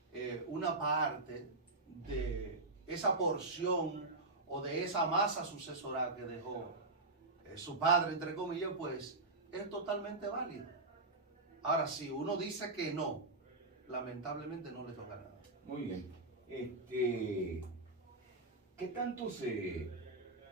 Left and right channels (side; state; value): left; quieter; 3.1 dB